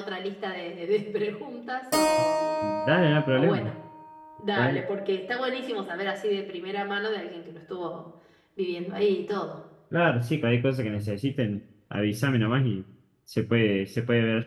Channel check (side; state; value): both; identical; correlation 1.00